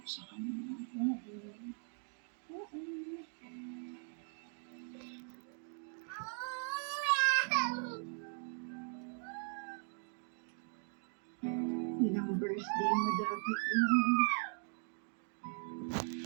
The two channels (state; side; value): silent; left; 51 dB below the other